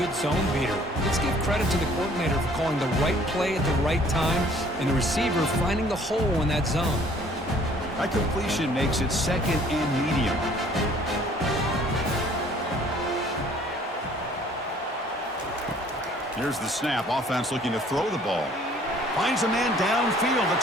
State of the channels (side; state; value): both; normal; correlation 0.56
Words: good zone beater? Let's give credit to the coordinator for calling the right play at the right time, and the receiver finding the hole in that zone. That completion makes it 2nd and medium. Here's the snap. Offense looking to throw the ball. Finds a man downfield.